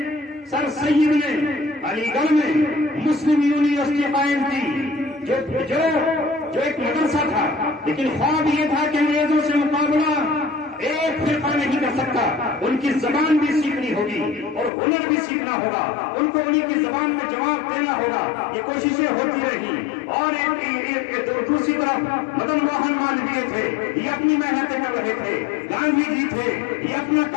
سر سید نے علی گڑھ میں مسلم یونیورسٹی قائم کی, جو ایک مدرسہ تھا, لیکن خواب یہ تھا کہ انگریزوں سے مقابلہ ایک فرقہ نہیں کر سکتا. ان کی زبان بھی سیکھنی ہوگی اور ہنر بھی سیکھنا ہوگا, ان کو انہی کی زبان میں جواب دینا ہوگا. یہ کوششیں ہوتی رہی. اور دوسری طرف مدن موہن مالویہ تھے, یہ اپنی محنتیں کر رہے تھے. گاندھی جی تھے, یہ اپنا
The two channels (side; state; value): right; drops out; at 14.7 s